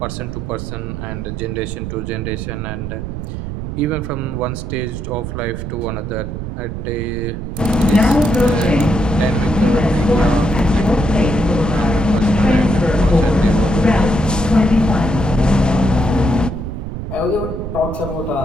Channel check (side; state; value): right; noise; rumble, 6 dB below the sound